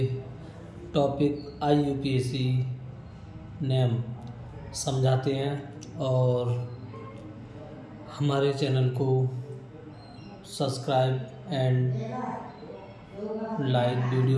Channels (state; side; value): identical; both; correlation 1.00